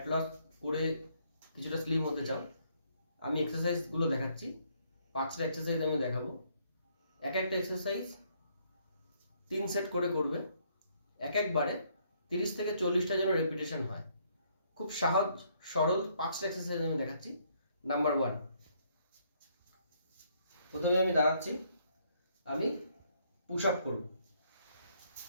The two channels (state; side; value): inverted; both; correlation -0.69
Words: লস করে কিছুটা স্লিম হতে চাও, আমি এক্সারসাইজগুলো দেখাচ্ছি। 5টা এক্সারসাইজ আমি দেখাবো। এক একটা এক্সারসাইজ 3 সেট করে করবে। একবারে 30 থেকে 40টা যেন রেপিটেশন হয়। খুব সহজ সরল 5টা এক্সারসাইজ আমি দেখাচ্ছি। নাম্বার 1, প্রথমে আমি দাঁড়াচ্ছি, আমি পুশ আপ করব।